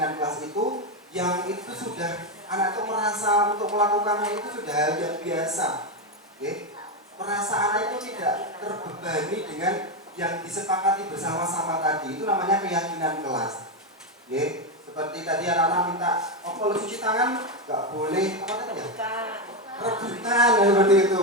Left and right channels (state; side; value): normal; both; correlation 0.09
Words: kelas itu yang itu sudah anak itu merasa untuk melakukannya itu sudah hal yang biasa. Oke? Merasa anak itu tidak terbebani dengan yang disepakati bersama-sama tadi. Itu namanya keyakinan kelas. Oke? Seperti tadi anak-anak minta, oh kalau cuci tangan nggak boleh apa tadi ya? Rebutan, seperti itu.